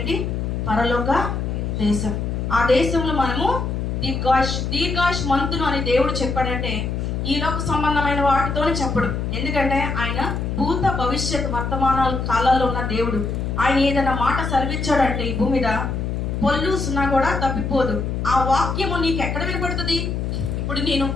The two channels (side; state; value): left; noise; hum, 2 dB below the sound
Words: పరలోక దేశం. ఆ దేశంలో మనము దీర్ఘాయుష్మంతులు అని దేవుడు చెప్పాడంటే ఈ లోక సంబంధమైన వాటితోనే చెప్పడు. ఎందుకంటే ఆయన భూత భవిష్యత్ వర్తమానాల కాలాల్లో ఉన్న దేవుడు. ఆయన ఏదైనా మాట సెలవిచ్చాడంటే ఈ భూమి మీద పొల్లు సున్నా కూడా తప్పిపోదు. ఆ వాక్యము నీకు ఎక్కడ వినపడుతుంది?